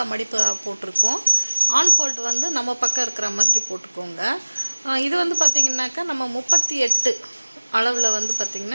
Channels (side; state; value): both; inverted; correlation -1.00